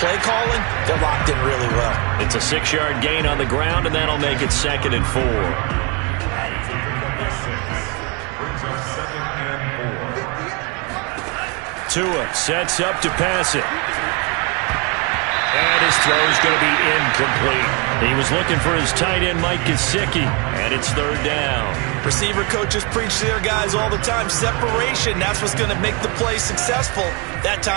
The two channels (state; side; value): quieter; left; 30.7 dB